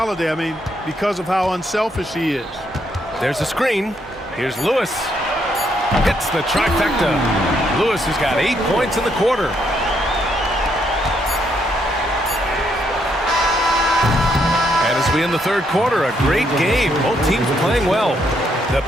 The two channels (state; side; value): normal; both; correlation 0.74